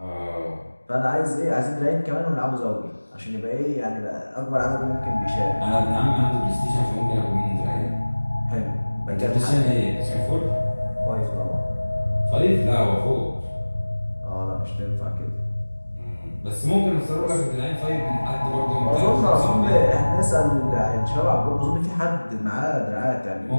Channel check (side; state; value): both; inverted; correlation -1.00